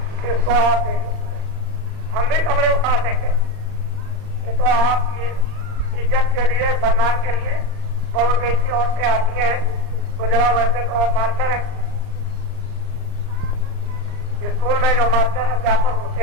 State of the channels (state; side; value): late; left; 39 ms